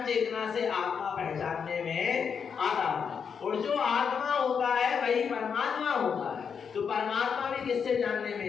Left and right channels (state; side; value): quieter; right; 6.6 dB